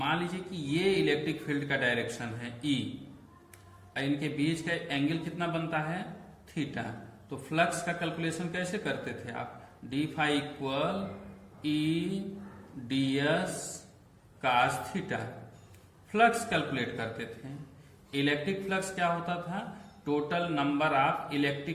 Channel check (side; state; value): both; identical; correlation 1.00